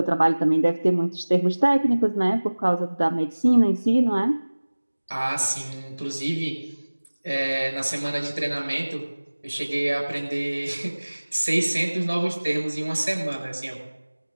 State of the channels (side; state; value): both; inverted; correlation -1.00